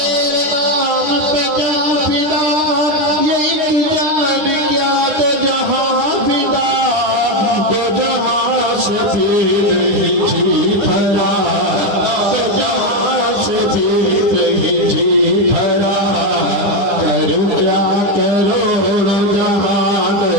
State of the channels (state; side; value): late; left; 9.8 ms